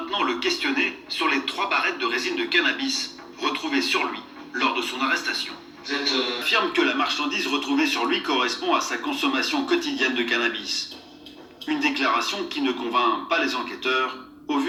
le questionner sur les 3 barrettes de résine de cannabis retrouvées sur lui lors de son arrestation. Il affirme que la marchandise retrouvée sur lui correspond à sa consommation quotidienne de cannabis. Une déclaration qui ne convainc pas les enquêteurs au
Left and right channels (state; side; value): identical; both; correlation 1.00